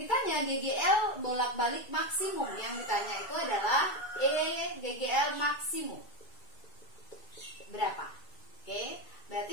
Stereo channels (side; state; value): right; late; 2.2 ms